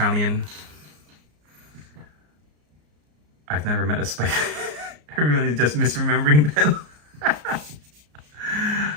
I've never met a spider. Everyone is just misremembering them.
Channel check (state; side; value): late; left; 34 ms